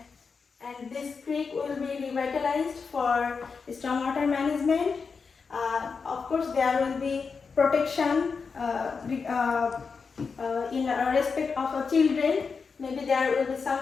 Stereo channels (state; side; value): quieter; right; 5.2 dB